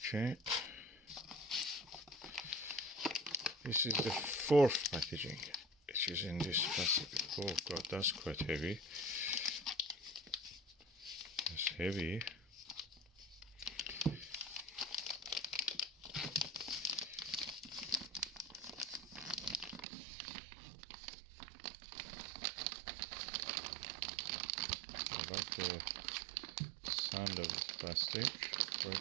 This is the fourth packaging, which is in this plastic. Oh god, that's quite heavy. That's heavy. I like the sound of this plastic,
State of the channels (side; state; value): left; drops out; at 19.9 s